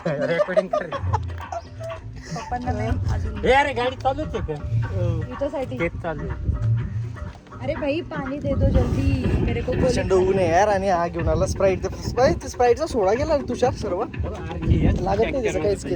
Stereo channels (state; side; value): identical; both; correlation 1.00